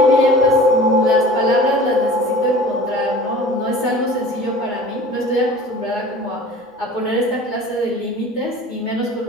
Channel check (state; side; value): normal; both; correlation 0.43